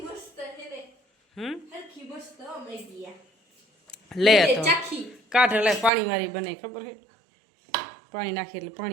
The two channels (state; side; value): drops out; left; at 5.9 s